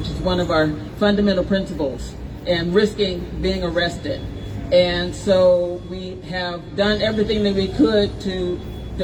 is one of our fundamental principles, and risking being arrested. And so we have done everything that we could to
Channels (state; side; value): identical; both; correlation 1.00